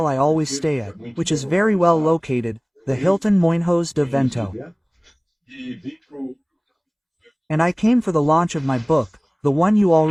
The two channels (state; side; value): identical; both; correlation 1.00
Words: I always stay at, which is very well located, the Hilton Moinhos de Vento. And I came for the launch of my book, the one you